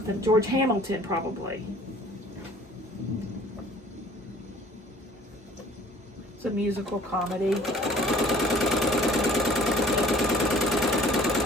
George Hamilton probably. It's a musical comedy.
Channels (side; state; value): both; normal; correlation 0.51